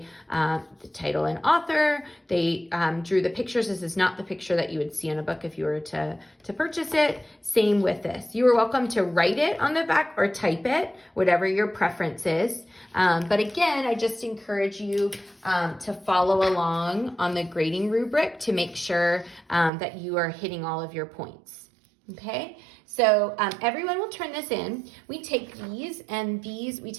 the title and author, they drew the pictures. This is not the picture that you would see in a book if you were to purchase it. Same with this. You are welcome to write it on the back or type it, whatever your preference is. But again, I just encourage you to follow along on the grading rubric to make sure that you are hitting all of your points. Okay, so everyone will turn this in. We take we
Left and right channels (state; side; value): drops out; left; at 19.7 s